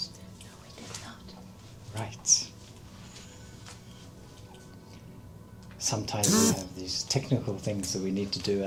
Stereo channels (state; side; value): identical; both; correlation 1.00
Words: No, we did not. Right. Sometimes we have these technical things that we need to do